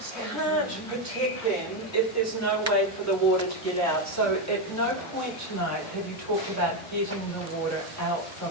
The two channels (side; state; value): both; normal; correlation 0.08